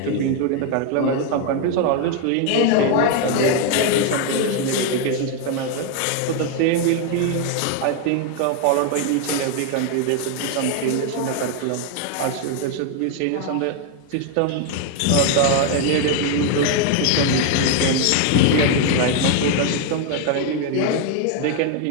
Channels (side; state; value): both; different; correlation 0.01